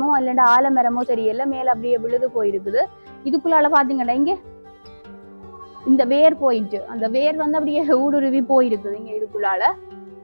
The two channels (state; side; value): inverted; both; correlation -1.00